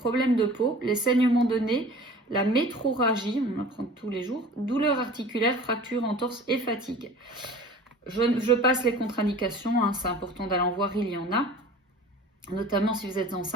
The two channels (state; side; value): normal; both; correlation 0.42